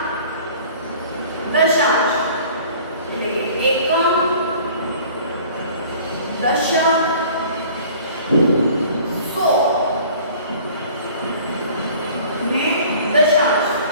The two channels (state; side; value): inverted; both; correlation -0.49